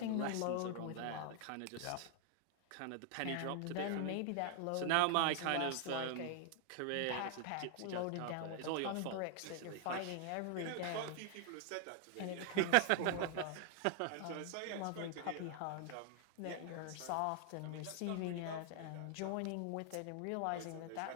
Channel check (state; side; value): different; both; correlation 0.00